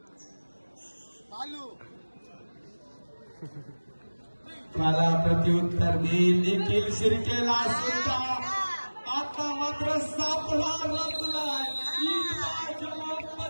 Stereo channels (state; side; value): inverted; both; correlation -1.00